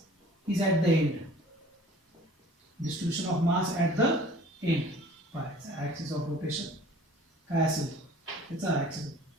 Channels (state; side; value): normal; both; correlation 0.49